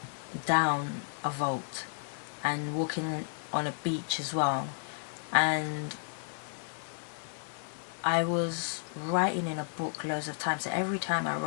a vault and walking on a beach as well. And I was writing in a book loads of times. So every time I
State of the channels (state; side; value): silent; right; 56 dB below the other